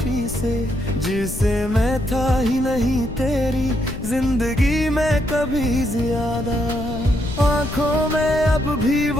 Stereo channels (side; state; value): left; noise; rumble, 9 dB below the sound